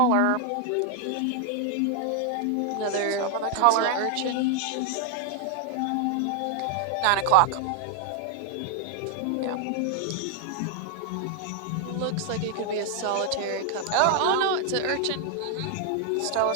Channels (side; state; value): both; different; correlation 0.00